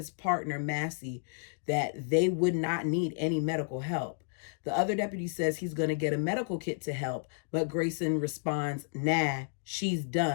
partner, Massey, that they would not need any medical help. The other deputy says he's going to get a medical kit to help, but Grayson responds, nah, She's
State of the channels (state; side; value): silent; right; digital silence